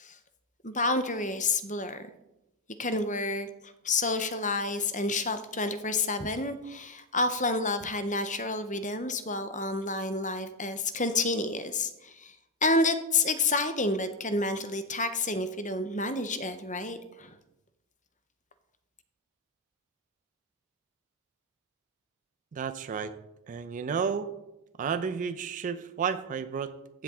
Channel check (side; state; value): both; normal; correlation 0.05